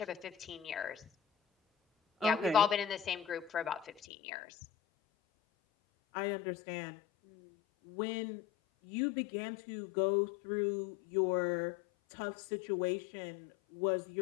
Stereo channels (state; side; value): drops out; right; at 4.0 s